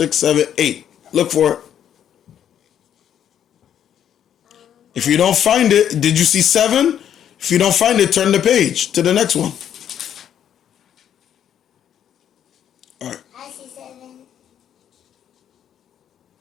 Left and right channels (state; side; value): quieter; right; 9.7 dB